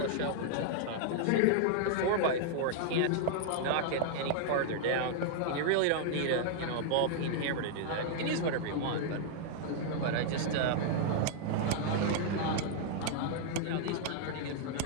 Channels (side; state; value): both; different; correlation -0.01